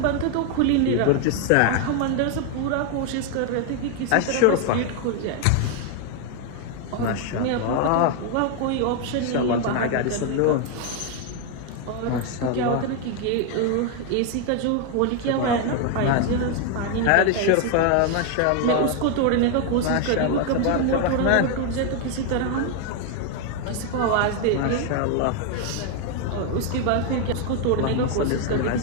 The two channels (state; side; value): different; both; correlation 0.01